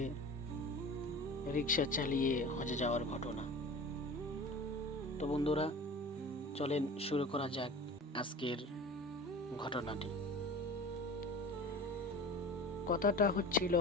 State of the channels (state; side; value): normal; both; correlation 0.37